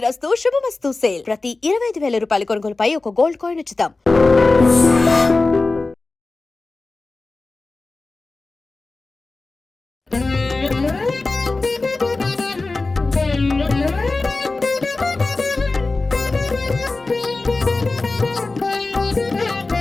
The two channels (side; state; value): right; quieter; 3.5 dB